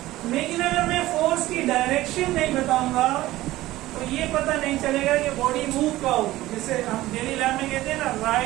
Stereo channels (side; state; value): left; quieter; 16.6 dB